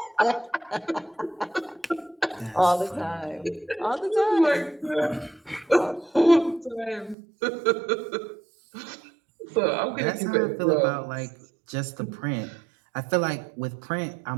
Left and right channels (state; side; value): drops out; left; at 7.2 s